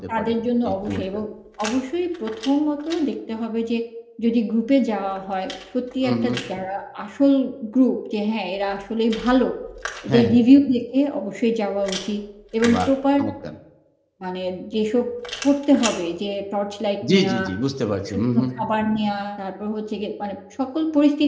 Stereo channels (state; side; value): identical; both; correlation 1.00